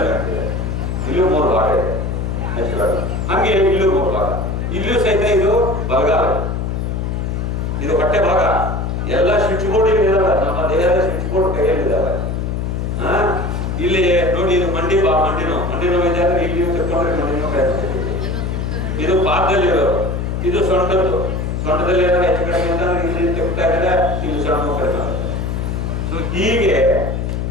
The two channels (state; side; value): noise; left; hum, 2 dB below the sound